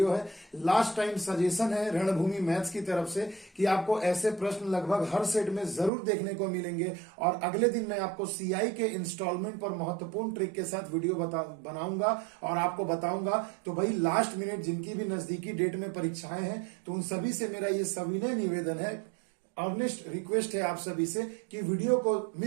है। लास्ट टाइम सजेशन है रणभूमि मैथ्स की तरफ से कि आपको ऐसे प्रश्न लगभग हर सेट में जरूर देखने को मिलेंगे और अगले दिन मैं आपको सीआई के इंस्टॉलमेंट पर महत्वपूर्ण ट्रिक के साथ वीडियो बनाऊंगा और आपको बताऊंगा। तो भाई लास्ट मिनट जिनकी भी नजदीकी डेट में परीक्षाएं हैं तो उन सभी से मेरा ये सविनय निवेदन है, अर्नेस्ट रिक्वेस्ट है आप सभी से कि वीडियो को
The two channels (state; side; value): drops out; left; at 5.9 s